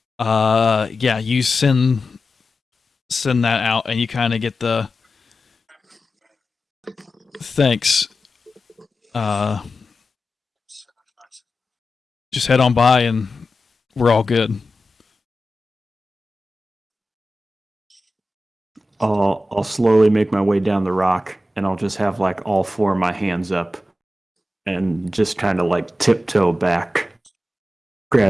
pow. Yeah, you send that out, and you kind of get the thanks. Just head on by, and we're all good. I'll slowly make my way down the rock, and I'll just have like all four of my hands up, and just kind of like tiptoe back,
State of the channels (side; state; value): both; normal; correlation 0.93